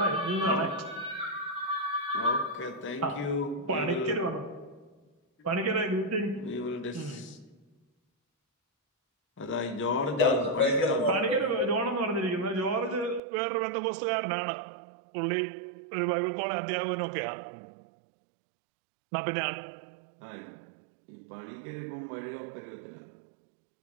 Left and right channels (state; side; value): drops out; left; at 13.2 s